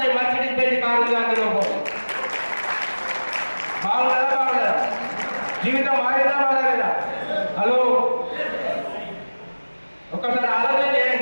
మర్సిడీస్ బెంజ్ కారు ఉంది. అందులో బాగుందా? జీవితం మారిందా మారలేదా? హలో, ఒకసారి ఆలోచన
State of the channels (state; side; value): inverted; both; correlation -1.00